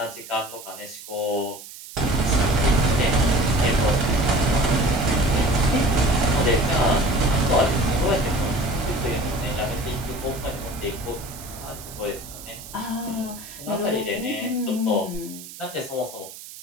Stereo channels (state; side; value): noise; right; hiss, 15 dB below the sound